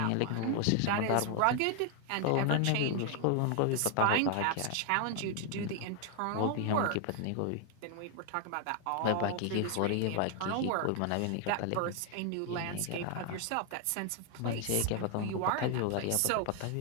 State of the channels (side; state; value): both; different; correlation 0.00